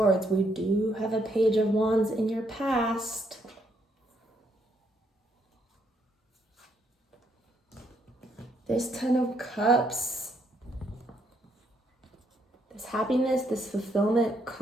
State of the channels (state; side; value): normal; both; correlation 0.73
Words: We do have a Page of Wands in your past. This Ten of Cups. This happiness, this fulfillment